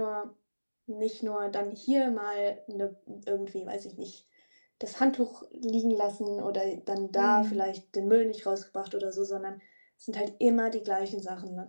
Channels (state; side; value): inverted; both; correlation -1.00